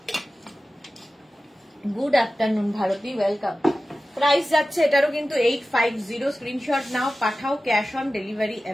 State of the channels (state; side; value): normal; both; correlation 0.95